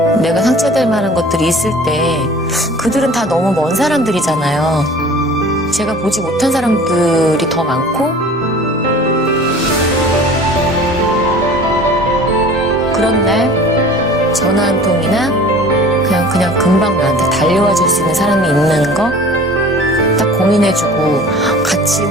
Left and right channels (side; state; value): both; normal; correlation 0.45